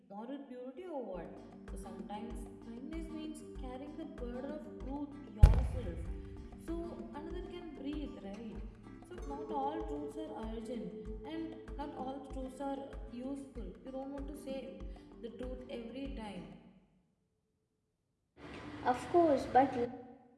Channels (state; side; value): identical; both; correlation 1.00